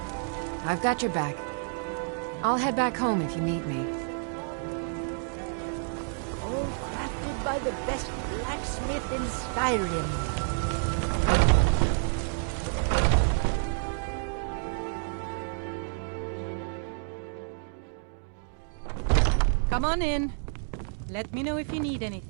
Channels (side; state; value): left; silent; 57 dB below the other